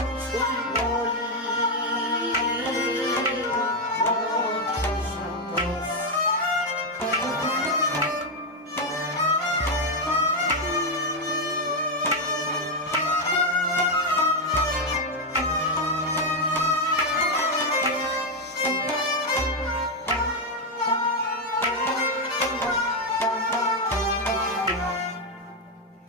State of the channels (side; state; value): both; normal; correlation 0.04